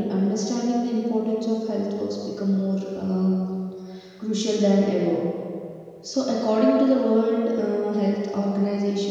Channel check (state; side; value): identical; both; correlation 1.00